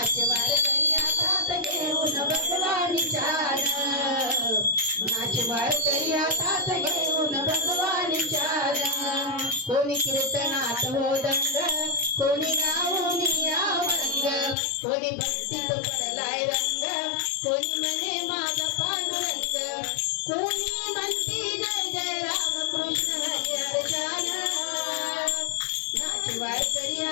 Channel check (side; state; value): right; drops out; at 14.6 s